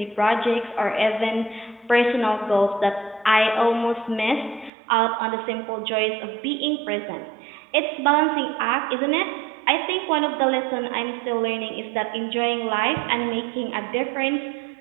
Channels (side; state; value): left; drops out; at 4.7 s